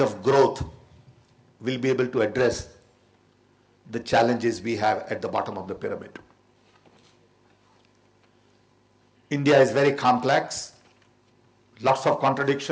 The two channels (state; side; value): identical; both; correlation 1.00